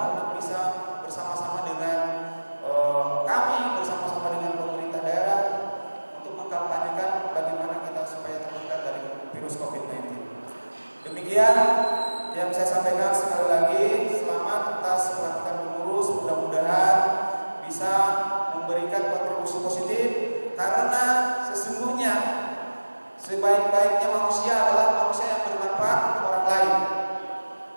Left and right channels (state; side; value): inverted; both; correlation -1.00